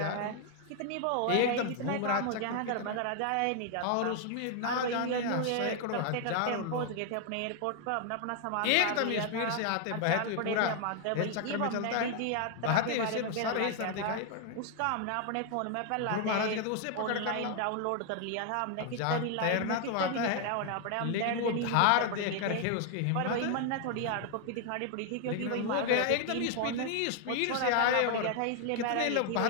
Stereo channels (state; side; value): different; both; correlation 0.00